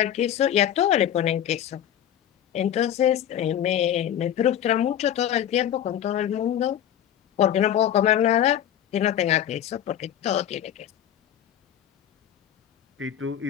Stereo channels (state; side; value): quieter; right; 10.5 dB